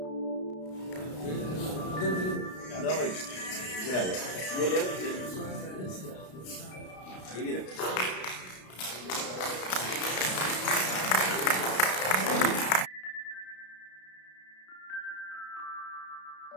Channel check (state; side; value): late; right; 33 ms